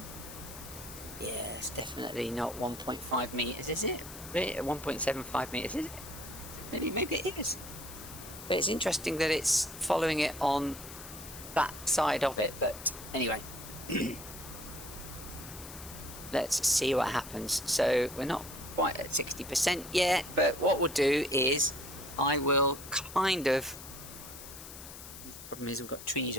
Yeah, it's definitely not 1.5 meters, is it? Really, 1.75 meters, is it? Maybe it is. But it's interesting that it's following it on that side of it. But anyway, let's see what happens. So we're not quite at 60% yet, but what we'll do is I will kind of... The problem is we've got trees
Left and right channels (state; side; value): noise; left; hiss, 13 dB below the sound